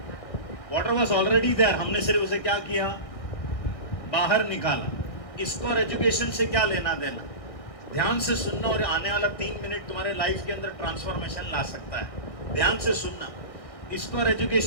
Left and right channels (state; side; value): late; right; 1.6 ms